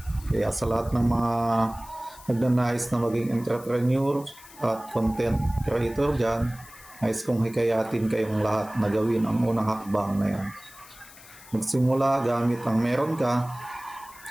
Kaya sa lahat ng mga nagnanais na maging entrepreneur at content creator dyan, nais kong hikayatin kayong lahat na gawin ang unang hakbang na yan. Magsimula gamit ang meron ka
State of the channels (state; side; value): noise; left; hiss, 20 dB below the sound